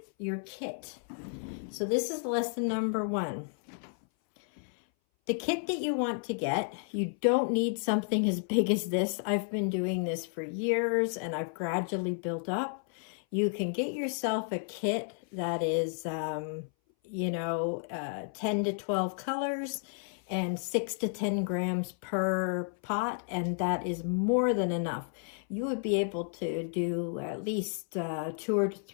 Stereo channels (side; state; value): right; silent; 57 dB below the other